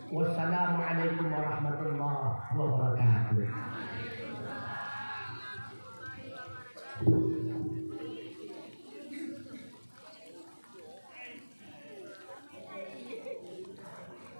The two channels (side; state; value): both; inverted; correlation -1.00